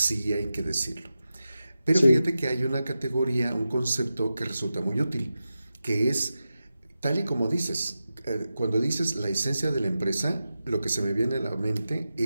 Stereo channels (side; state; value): both; inverted; correlation -0.92